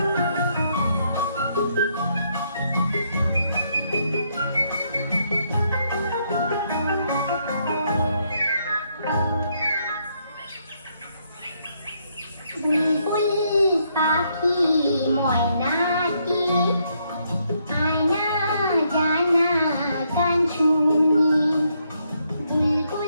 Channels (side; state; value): both; inverted; correlation -0.75